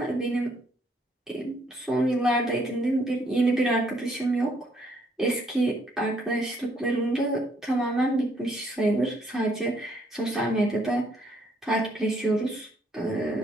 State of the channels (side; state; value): both; normal; correlation 0.68